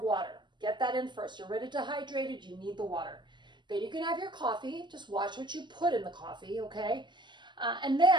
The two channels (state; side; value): late; left; 0.22 ms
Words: water. Get that in first. You're already dehydrated. You need the water. Then you can have your coffee. Just watch what you put in the coffee, okay? And